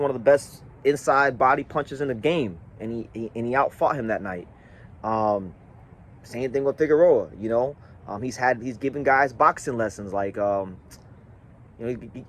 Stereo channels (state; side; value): identical; both; correlation 1.00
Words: of the best inside body punchers in the game, and he outfought him that night. Same thing with Figueroa. You know, he's given guys boxing lessons. Like, you know,